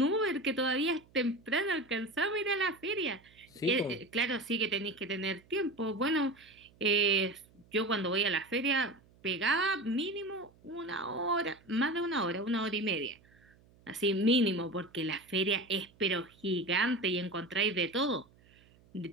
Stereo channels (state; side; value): noise; right; hum, 29 dB below the sound